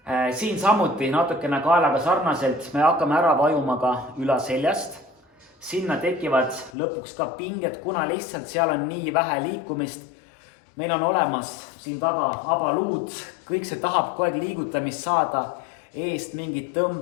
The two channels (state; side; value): drops out; right; at 6.7 s